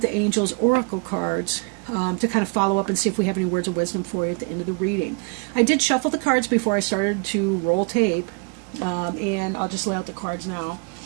Angels Oracle cards, to kind of follow up and see if we have any words of wisdom for you at the end of the reading. I did shuffle the cards before I started to roll tape, and I'll just lay out the cards now.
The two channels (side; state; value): left; quieter; 34.3 dB